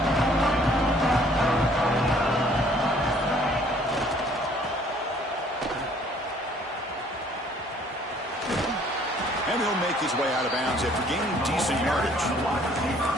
And he'll make his way out of bounds after gaining decent yardage.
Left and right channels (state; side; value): normal; both; correlation 0.59